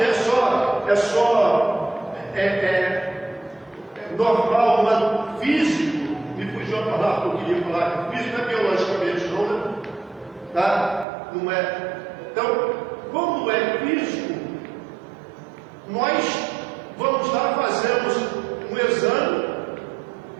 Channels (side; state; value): left; drops out; at 11.1 s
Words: é normal, mas físico, me fugiu a palavra que eu queria falar, físico não é biologicamente não, né? Tá? Não é. Então, quando é físico, nós vamos lá, fazemos um exame,